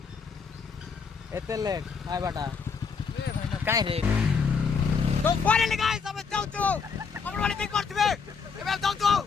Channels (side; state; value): right; quieter; 5.5 dB